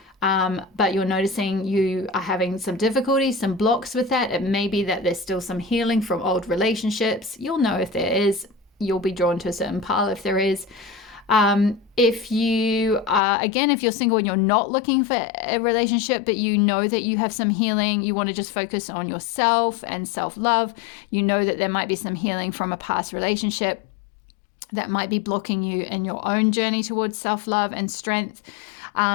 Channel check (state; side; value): drops out; right; at 13.2 s